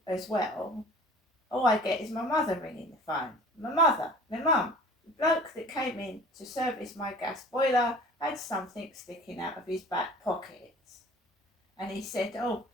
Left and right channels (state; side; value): normal; both; correlation 0.46